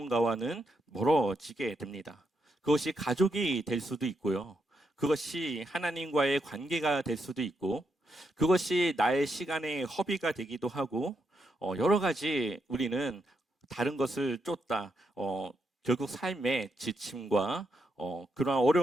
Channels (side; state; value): both; normal; correlation 0.81